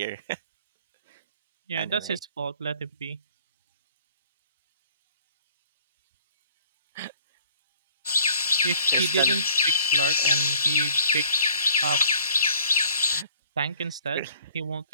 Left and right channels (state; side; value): inverted; both; correlation -0.55